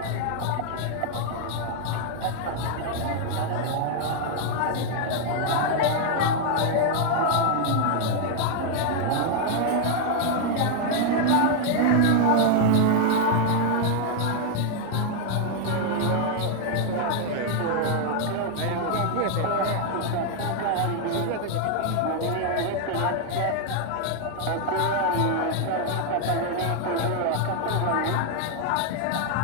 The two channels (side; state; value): both; different; correlation 0.00